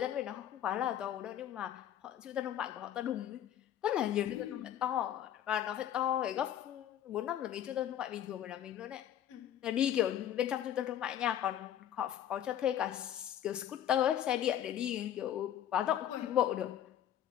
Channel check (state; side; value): quieter; right; 10.9 dB